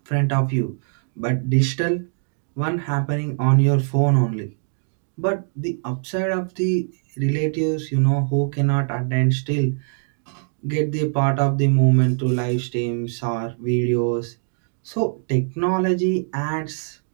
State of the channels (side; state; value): left; silent; digital silence